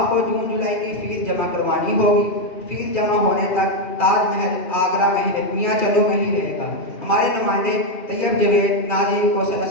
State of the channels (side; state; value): right; late; 2.4 ms